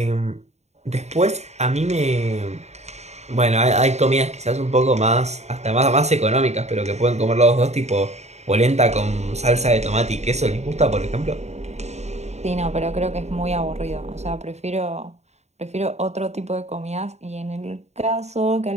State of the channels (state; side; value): late; left; 0.32 ms